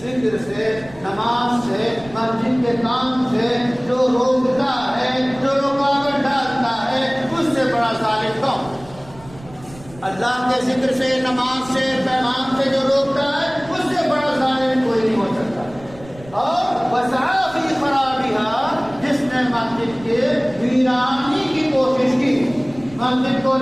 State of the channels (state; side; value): noise; right; rumble, 21 dB below the sound